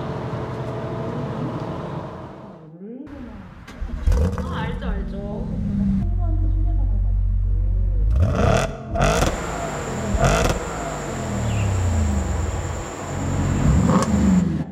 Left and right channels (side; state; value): both; identical; correlation 1.00